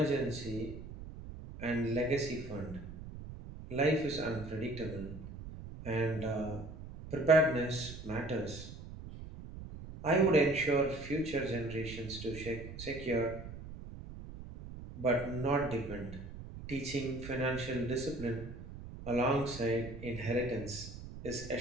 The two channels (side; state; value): right; noise; rumble, 12 dB below the sound